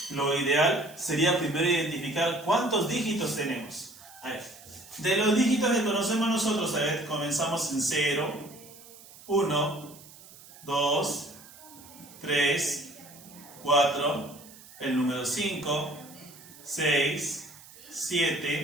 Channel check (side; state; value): right; noise; hiss, 20 dB below the sound